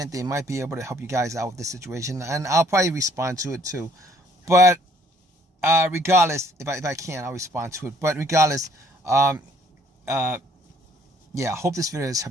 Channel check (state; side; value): normal; both; correlation 0.62